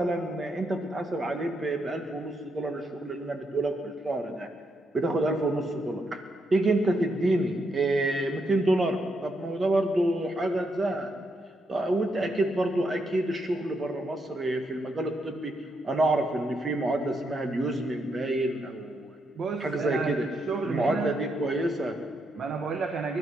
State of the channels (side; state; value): both; normal; correlation 0.79